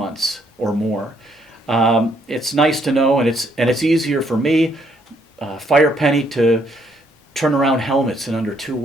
or more. It's nice to know, and it's easier for me, Firepenny, to turn around helmets in under 2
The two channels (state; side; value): normal; both; correlation 0.70